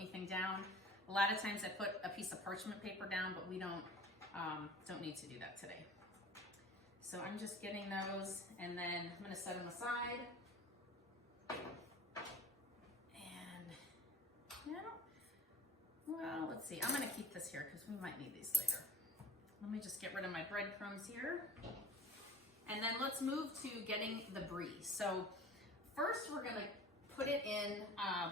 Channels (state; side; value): normal; both; correlation 0.42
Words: down. A lot of times I put a piece of parchment paper down, but we don't don't need to do that today. So I'm just getting those, and then I'm gonna set them aside. And well, let's see. I'm gonna keep this here because we might need these later. Let me just get rid of my breadcrumbs here. And then let's move to getting the brie. So first we're gonna put it in